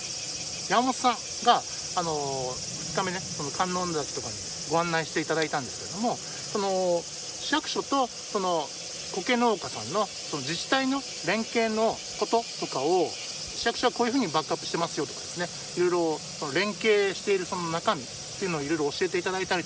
本さんが2日目ね、その観音崎とかにご案内していただいたんですけれども、その市役所とその苔農家さんのその自治体の連携のこととかを、市役所はこういうふうにバックアップしてますよとかですね、いろいろその連携しているその中身っていうのをいろいろ教えていただいたり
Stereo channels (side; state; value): both; identical; correlation 1.00